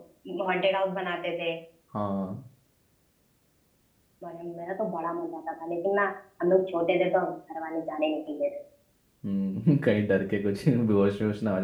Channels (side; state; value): both; identical; correlation 1.00